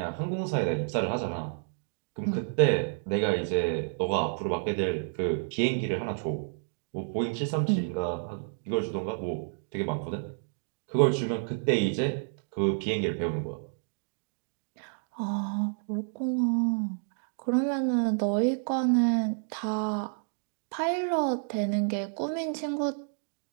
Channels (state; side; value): silent; left; digital silence